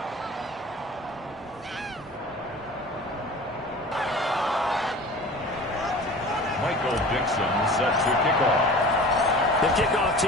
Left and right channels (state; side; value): normal; both; correlation 0.40